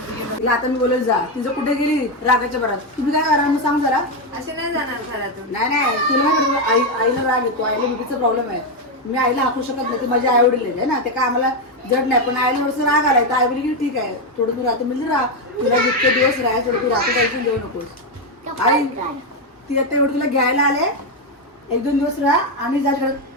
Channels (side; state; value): both; normal; correlation 0.06